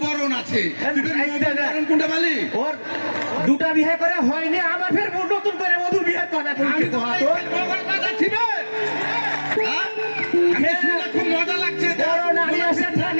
বরণ আছে কোনটা বলি ওর দুটা বিয়ে করে হয়নি আবার ফের নতুন করে মধু বিয়ে করে খুব মজা লাগছে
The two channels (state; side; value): inverted; both; correlation -1.00